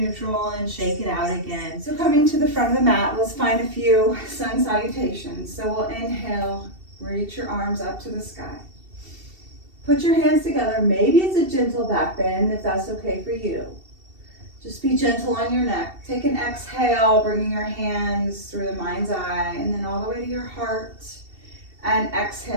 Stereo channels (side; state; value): left; late; 2.7 ms